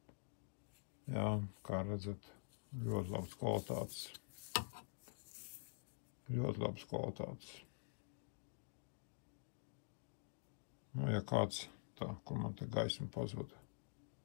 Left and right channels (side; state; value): right; silent; digital silence